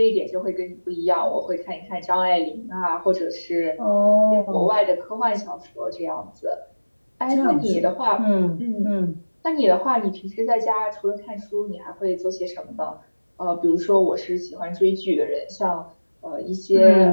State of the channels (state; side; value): inverted; both; correlation -1.00